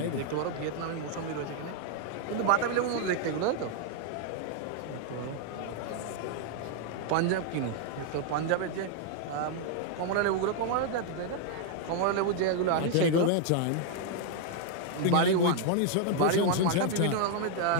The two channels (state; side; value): different; both; correlation 0.00